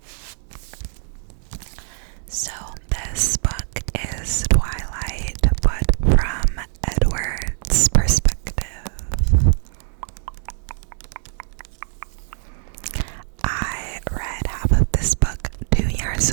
So this book is Twilight, but from Edward's perspective. I read half of this book 2 years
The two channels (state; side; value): silent; left; 64 dB below the other